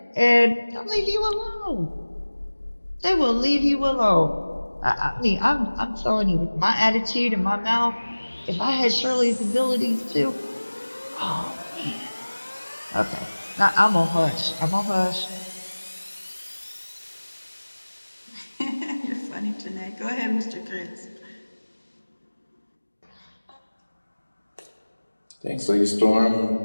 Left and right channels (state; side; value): inverted; both; correlation -1.00